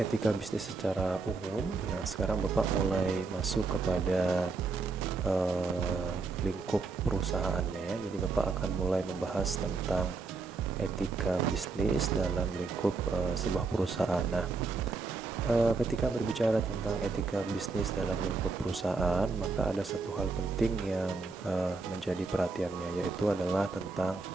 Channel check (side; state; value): left; quieter; 4.0 dB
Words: bisnis secara umum. Nah, sekarang Bapak mulai masuk kepada lingkup perusahaannya ya. Jadi Bapak akan mulai membahas tentang etika bisnis dalam lingkup sebuah perusahaan. Nah, ketika berbicara tentang etika bisnis dalam lingkup perusahaan, maka ada satu hal penting yang menjadi perhatiannya, yaitu adalah tentang